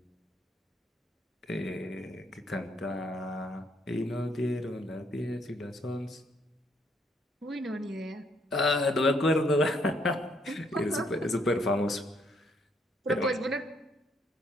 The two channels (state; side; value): normal; both; correlation 0.70